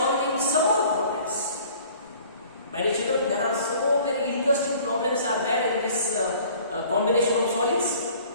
some more problems. My dear children, there are so many interesting problems are there in this combination of solids.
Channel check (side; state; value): both; inverted; correlation -0.51